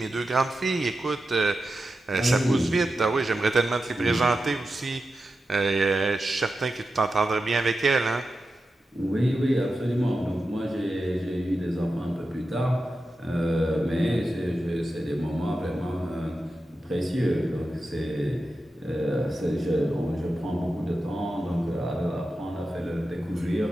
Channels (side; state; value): both; normal; correlation 0.91